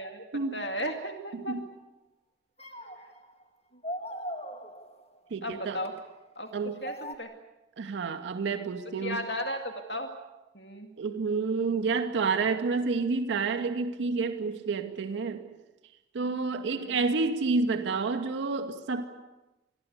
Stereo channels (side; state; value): left; quieter; 3.4 dB